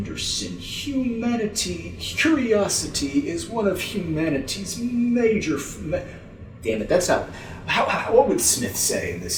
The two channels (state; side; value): identical; both; correlation 1.00